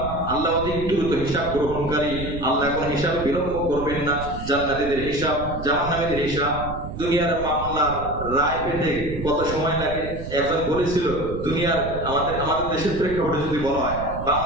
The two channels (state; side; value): noise; right; rumble, 9 dB below the sound